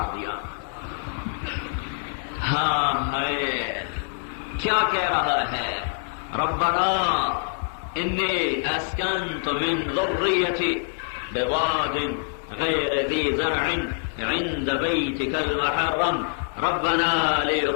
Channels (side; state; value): right; silent; 62 dB below the other